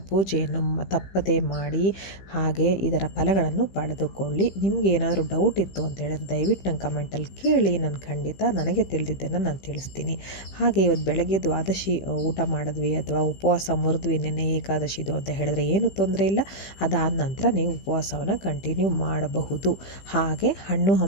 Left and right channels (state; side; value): late; right; 15 ms